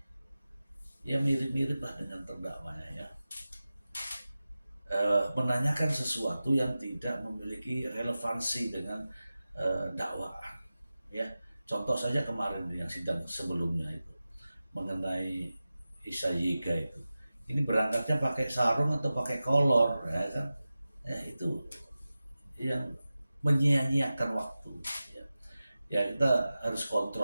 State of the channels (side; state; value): both; inverted; correlation -0.95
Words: ya mirip-mirip lah dengan terdakwanya ya. Menanyakan sesuatu yang tidak memiliki relevansi dengan dakwaan ya. Contoh saja kemarin yang sidang sebelumnya itu mengenai Isa Yiga itu, ini berangkatnya pakai sarung atau pakai kolor ya kan, ya itu yang menyia-nyiakan waktu ya. Ya kita harus